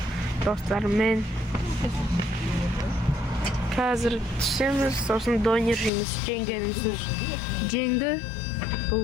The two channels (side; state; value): right; drops out; at 5.9 s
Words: do'stlarim hozir tushamiz, so'ng don yeymiz, jangamiz. Jangda bu